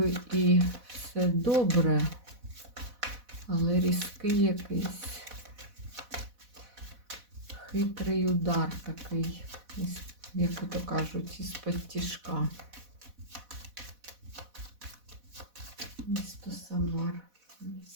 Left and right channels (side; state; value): left; late; 4.1 ms